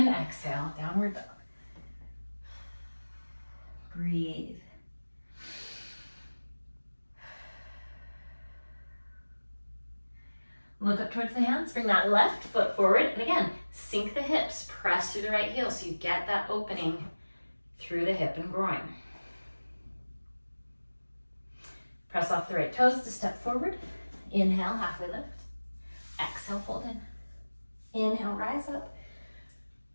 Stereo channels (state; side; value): inverted; both; correlation -1.00